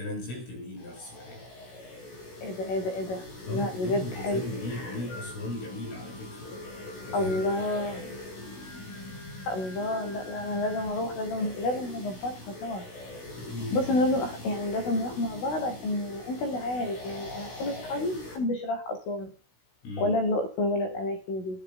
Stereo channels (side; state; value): right; late; 16 ms